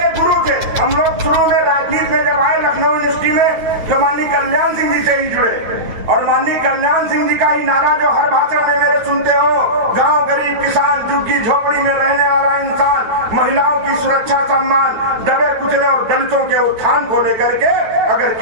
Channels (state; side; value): late; left; 9.1 ms